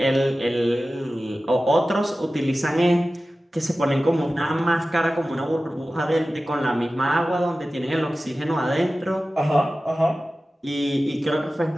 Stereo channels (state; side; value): normal; both; correlation 0.95